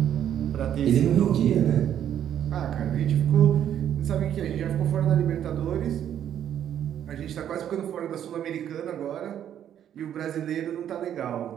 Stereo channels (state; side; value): quieter; left; 10.1 dB